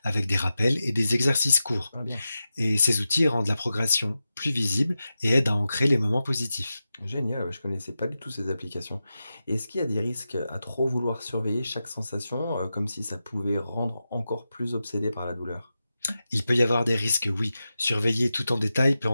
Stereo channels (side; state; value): both; inverted; correlation -0.92